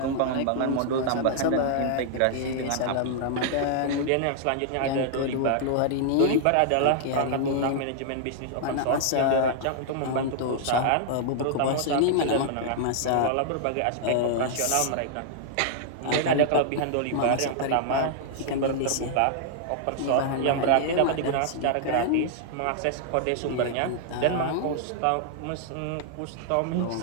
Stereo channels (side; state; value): both; different; correlation -0.01